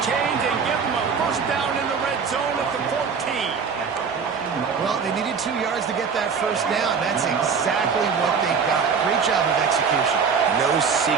chains and give them a 1st down in the red zone at the 14. Well, they needed 2 yards to get that 1st down. That's exactly what they got. Great job of execution. No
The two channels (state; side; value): quieter; left; 5.9 dB